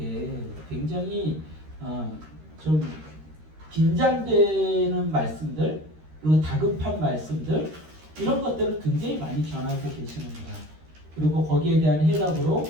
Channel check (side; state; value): left; late; 13 ms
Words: 굉장히 좀 긴장되는 말씀들 그리고 다급한 말씀들 이런 것들을 굉장히 많이 전하고 계시는구나. 그리고 거기에 대한 해답으로